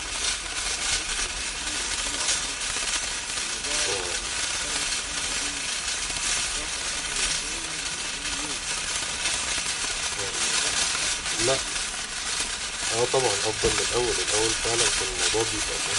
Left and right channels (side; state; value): both; identical; correlation 1.00